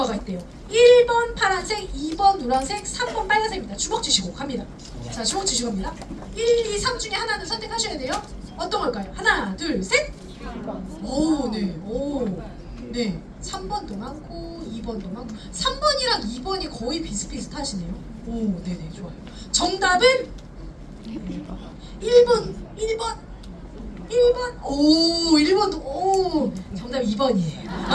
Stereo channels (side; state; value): both; identical; correlation 1.00